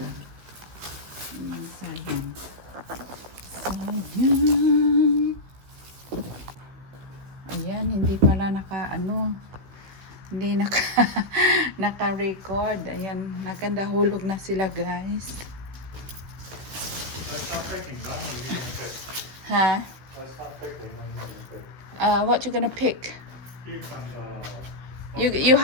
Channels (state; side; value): late; left; 16 ms